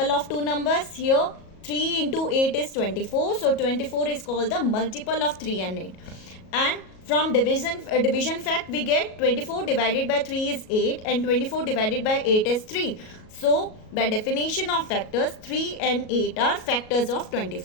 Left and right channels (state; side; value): late; right; 37 ms